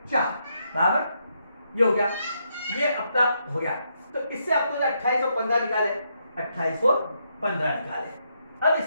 बराबर, ये हो गया, ये अपना हो गया। तो इससे आपको 28 और 15 निकाले, 28 और 15 निकाले। अब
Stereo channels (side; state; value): both; inverted; correlation -0.78